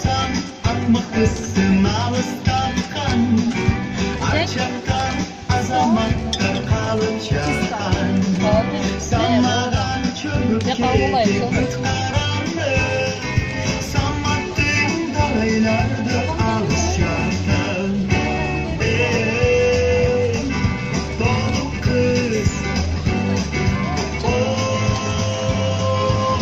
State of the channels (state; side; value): identical; both; correlation 1.00